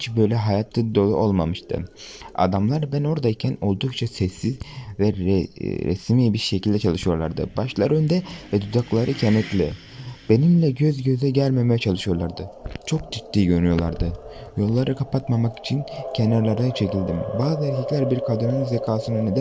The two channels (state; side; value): identical; both; correlation 1.00